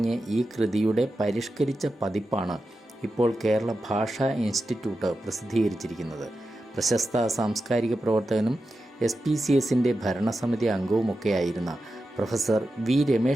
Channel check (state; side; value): normal; both; correlation 0.91